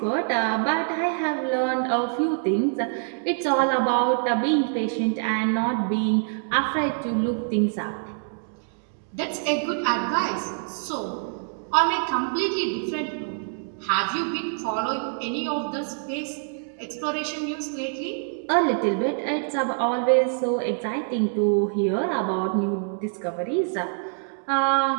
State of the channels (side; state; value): left; silent; digital silence